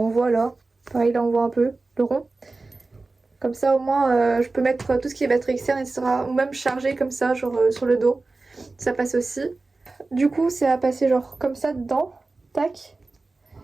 voit là. Pareil là on voit un peu le rond. Comme ça au moins je peux mettre tout ce qui est batterie externe etc. Ou même charger comme ça genre sur le dos. Ça passe aussi. Du coup c'est à passer genre comme ça dedans. Tac.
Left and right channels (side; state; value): left; quieter; 3.5 dB